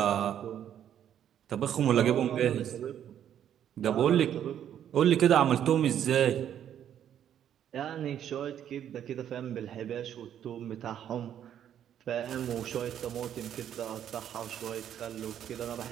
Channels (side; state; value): left; quieter; 10.0 dB